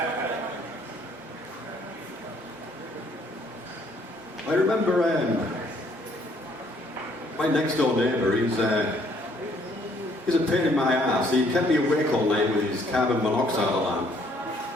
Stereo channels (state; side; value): normal; both; correlation 0.65